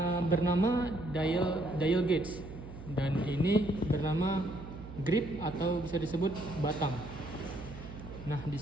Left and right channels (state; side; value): noise; right; hum, 13 dB below the sound